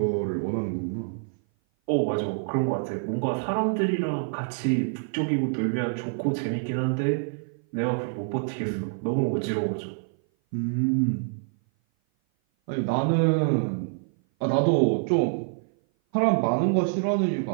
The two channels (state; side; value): silent; left; 57 dB below the other